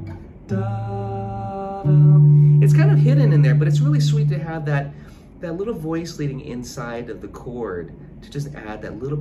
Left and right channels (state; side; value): identical; both; correlation 1.00